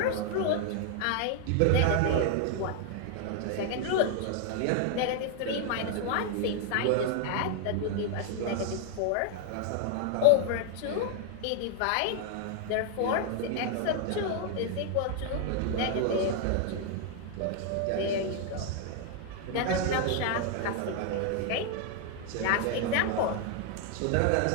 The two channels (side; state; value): both; different; correlation 0.00